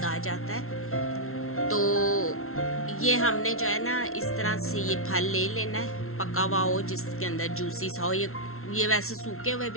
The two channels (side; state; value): right; late; 0.62 ms